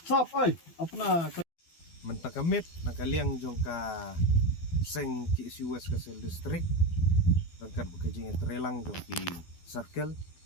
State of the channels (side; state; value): right; late; 12 ms